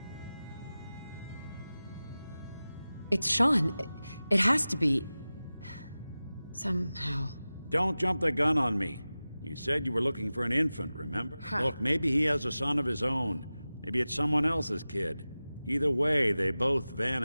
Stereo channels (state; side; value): inverted; both; correlation -0.96